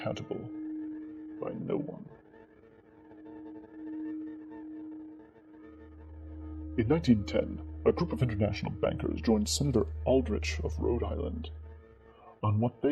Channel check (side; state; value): both; identical; correlation 1.00